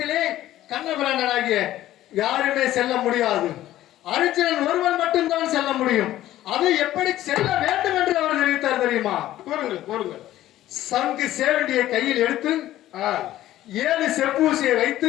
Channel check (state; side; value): quieter; right; 14.1 dB